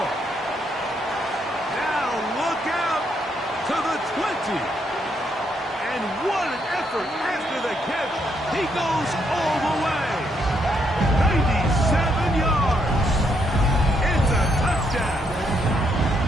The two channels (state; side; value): normal; both; correlation 0.75